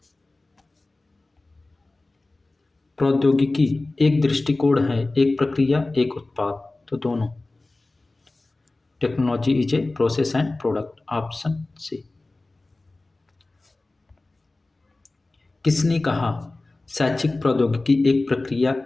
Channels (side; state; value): right; quieter; 3.1 dB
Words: प्रौद्योगिकी एक दृष्टिकोण है, एक प्रक्रिया, एक उत्पाद? तो दोनों। Technology is a process and product, option C. किसने कहा शैक्षिक प्रौद्योगिकी एक प्रक्रिया,